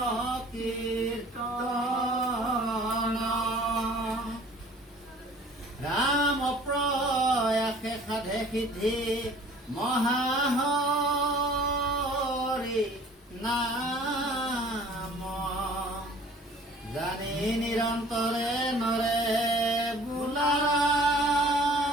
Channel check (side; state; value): both; normal; correlation 0.51